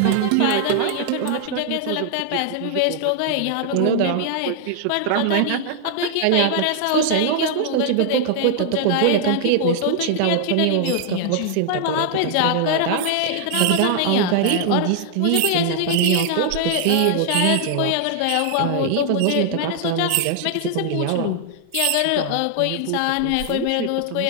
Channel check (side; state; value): both; different; correlation 0.00